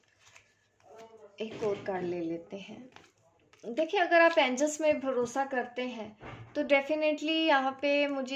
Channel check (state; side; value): identical; both; correlation 1.00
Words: एक और कार्ड ले लेते हैं। देखिए, अगर आप एंजल्स में भरोसा करते हैं तो डेफिनेटली यहाँ पे